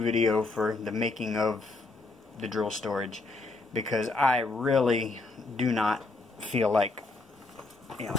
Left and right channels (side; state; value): right; quieter; 3.4 dB